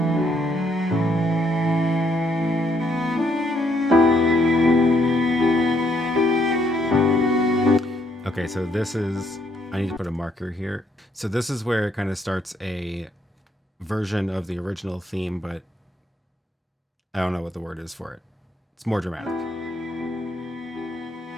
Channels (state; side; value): normal; both; correlation 0.72